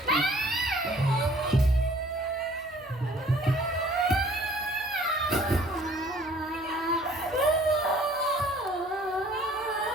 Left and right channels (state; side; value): noise; right; hum, 27 dB below the sound